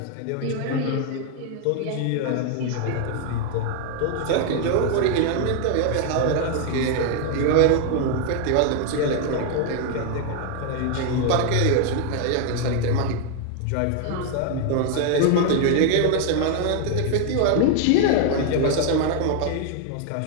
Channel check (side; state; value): both; different; correlation 0.00